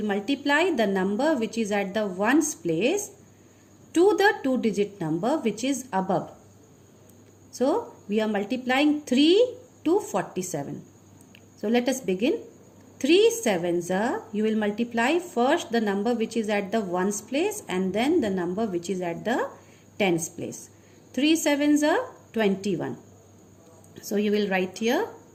multiply the number which is at the ones place to the 2-digit number which is above. So we are multiplying 3 to 47. So let us begin. 3 sevens are, you will multiply first the number which is at the ones place and then the number which is at the tens place. 3 sevens are 21. So you will write here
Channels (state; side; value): identical; both; correlation 1.00